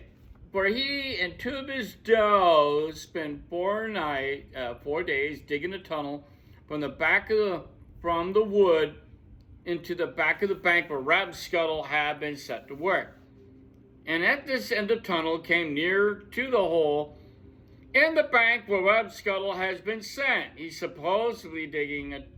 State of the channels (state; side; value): identical; both; correlation 1.00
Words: For he and two of his does spent 4 days digging a tunnel from the wood into the back of the bank where Rabscuttle had been set to work. And at this end of the tunnel came near to the hole in the bank where Rabscuttle has been sent. He's supposedly digging a